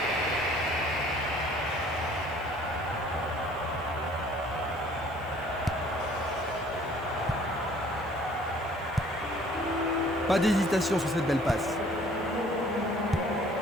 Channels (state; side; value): noise; right; hiss, 27 dB below the sound